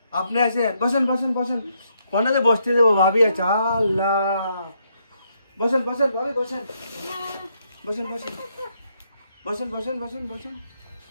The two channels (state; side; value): inverted; both; correlation -0.76